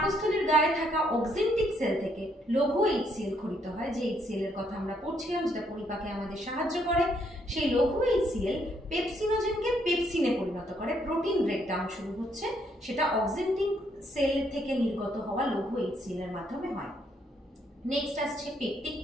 গায়ে থাকা অক্সেন্টিক সেল থেকে লঘু HCl খরিত হয়, যে HCl এর কথা আমরা পড়ছিলাম, যেটা পরিপাকে আমাদের সাহায্য করে। সেই লঘু HCl পেপসিনোজেনকে পেপসিনে পরিণত করে, প্রোটিন ব্রেকডাউন শুরু হচ্ছে, সেটা অক্সেন্টিক সেল থেকে নির্গত হওয়া লঘু HCl এর মাধ্যমে হয়। নেক্সট আসছে পেপটিক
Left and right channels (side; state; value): both; normal; correlation 0.71